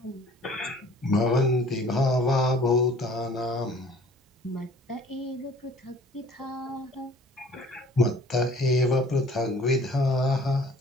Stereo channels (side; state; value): both; normal; correlation 0.51